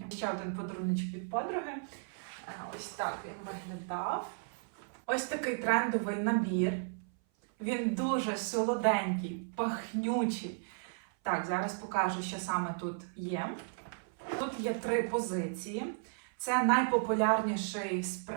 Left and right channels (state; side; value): silent; left; 55 dB below the other